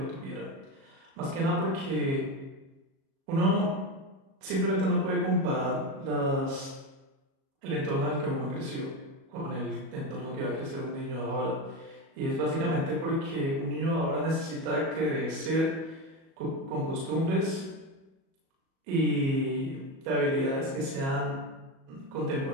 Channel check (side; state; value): left; late; 37 ms